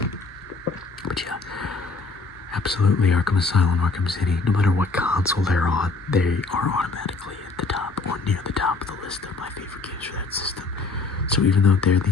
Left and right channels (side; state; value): right; quieter; 3.8 dB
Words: But yeah, absolutely Arkham Asylum, Arkham City, no matter what console they're on, they are automatically at the top or near the top of the list of my favorite games for that system. So even though they're